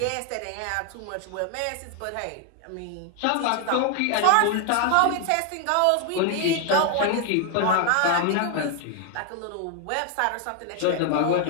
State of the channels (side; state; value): both; different; correlation 0.01